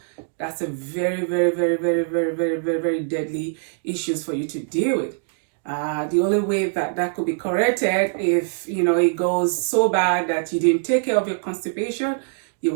that's a very, very, very, very, very, very, very, very deadly issues for you to deal with. The only way that could be corrected if, it goes so bad that you didn't take care of your constipation, you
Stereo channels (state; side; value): silent; left; digital silence